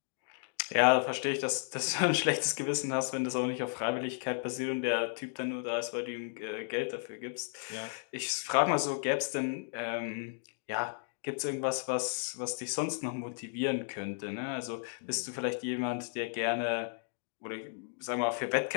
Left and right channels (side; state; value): right; silent; digital silence